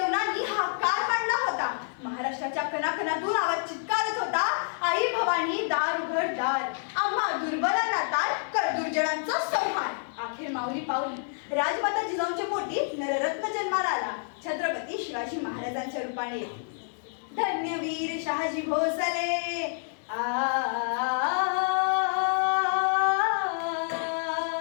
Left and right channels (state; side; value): silent; right; digital silence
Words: हा काळ मांडला होता. महाराष्ट्राच्या कणाकणातून आवाज चित्कारत होता, आई भवानी दार उघड दार, आम्हा दुर्बलांना तार कर दुर्जनांचा संहार. अखेर माऊली पावली राजमाता जिजाऊंच्या पोटी नररत्न जन्माला आला, छत्रपती शिवाजी महाराजांच्या रूपाने. धन्यवीर शहाजी भोसले